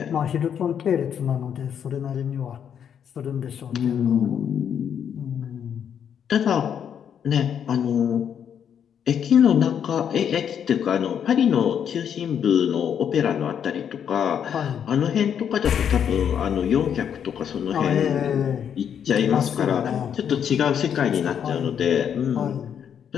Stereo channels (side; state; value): right; quieter; 8.4 dB